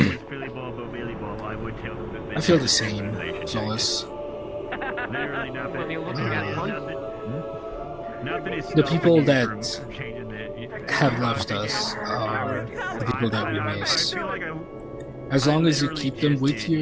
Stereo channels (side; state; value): both; identical; correlation 1.00